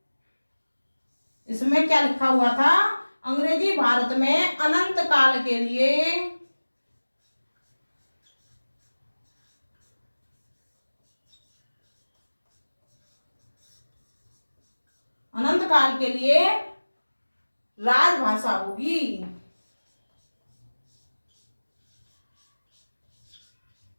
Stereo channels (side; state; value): both; inverted; correlation -1.00